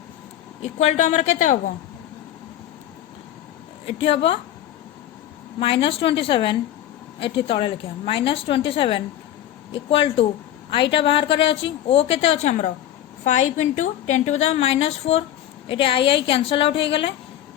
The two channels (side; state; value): right; quieter; 11.8 dB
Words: इक्वल टू आमर केते हम ये हम -27 ये तले लिखा -27 इक्वल टू आईटा बाहर करे अच्छी o केते अच्छे आमर 5 × 10⁻⁻4 ये आई कैंसल आउट हो गले